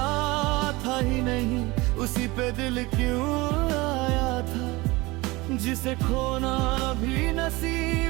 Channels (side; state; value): left; quieter; 22.4 dB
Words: था ही नहीं उसी पे दिल क्यों आया था, जिसे खोना भी